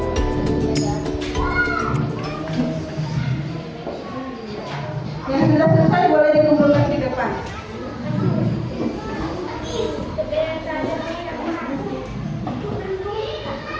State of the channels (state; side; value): identical; both; correlation 1.00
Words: Yang sudah selesai boleh dikumpulkan di depan.